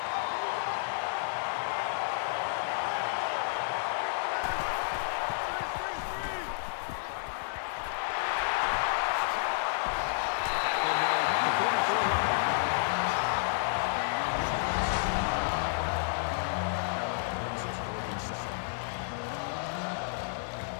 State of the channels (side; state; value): right; silent; digital silence